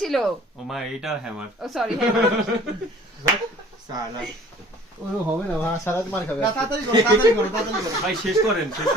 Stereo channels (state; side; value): normal; both; correlation 0.51